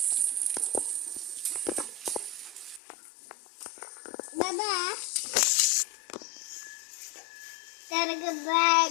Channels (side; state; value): right; drops out; at 2.8 s